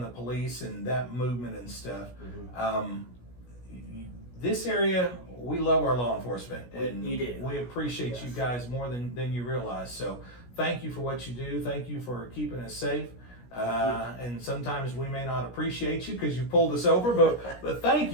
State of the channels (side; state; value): right; late; 17 ms